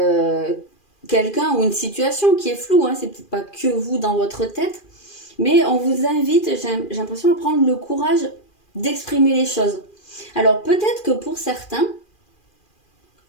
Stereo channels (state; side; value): late; right; 2.4 ms